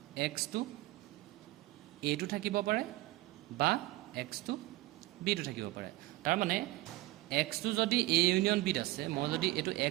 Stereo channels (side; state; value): left; quieter; 18.6 dB